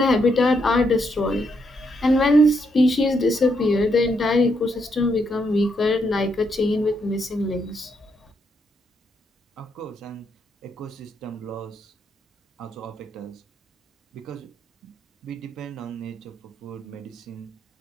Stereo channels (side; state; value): both; normal; correlation 0.78